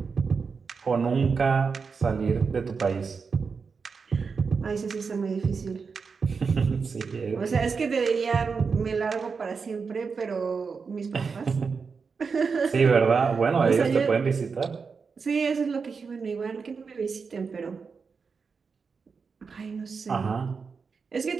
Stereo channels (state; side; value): quieter; left; 5.2 dB